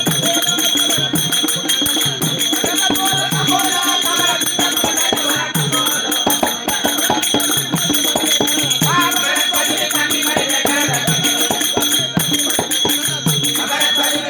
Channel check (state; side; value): identical; both; correlation 1.00